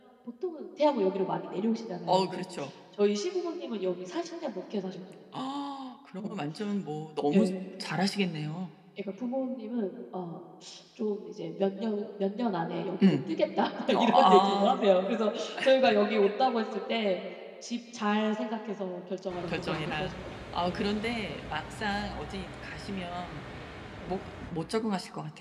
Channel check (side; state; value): both; identical; correlation 1.00